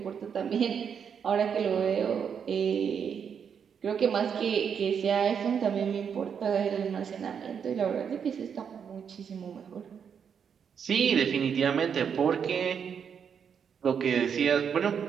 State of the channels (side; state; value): left; quieter; 7.3 dB